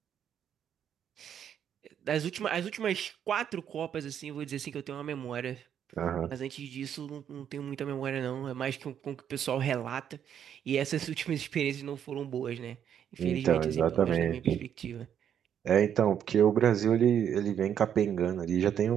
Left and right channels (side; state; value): left; quieter; 9.1 dB